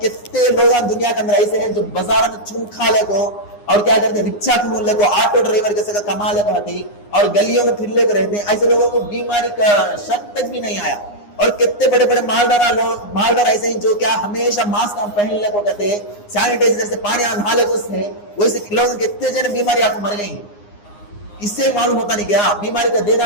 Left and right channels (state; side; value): late; right; 9.7 ms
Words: کتنے لوگ دنیا کے اندر ایسے ہیں جو بازار میں چون کھا لے کو اور کیا کرتے ہیں رکشا کھول لے کو, آٹو ڈرائیور کے ساتھ کما لے کو آتی اور گلیوں میں پھر لے کے رہتے ہیں. ایسے لوگوں کو بیماری کا شک تک بھی نہیں آیا. اور کتنے بڑے بڑے مالدار ایسے ہیں جو کیا ہمیشہ ماسک پہن لے کو کہتے ہیں, سینیٹائزر سے پانی نہا لے کو ہے, ویسے لوگ کتنے جنے بیماری آپ کو مر گئی ہیں. اس سے معلوم ہوتا نہیں کیا بیماری کا دینا